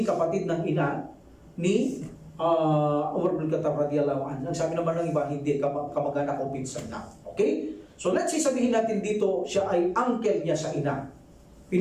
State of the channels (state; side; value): identical; both; correlation 1.00